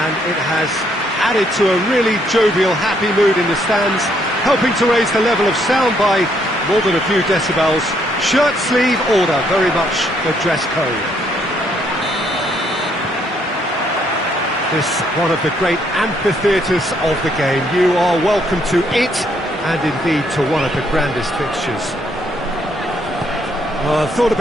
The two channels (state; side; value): normal; both; correlation 0.71